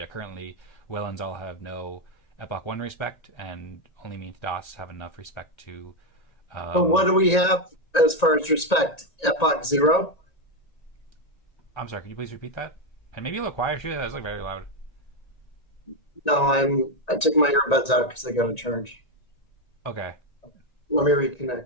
currently Will and Zaal have no Epoch 1 respect, and only me and Tadas have enough respect to... but what do we have as far as respect? Epoch 0? I'm sorry, can you please repeat that? And maybe a little quieter too, that was like very loud. No, I took my earbuds out because they got a charge. Okay. Let me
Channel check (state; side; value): late; right; 1.9 ms